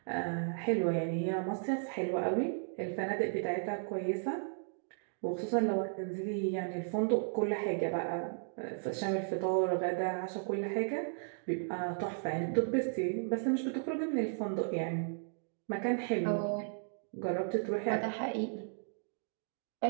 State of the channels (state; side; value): silent; left; digital silence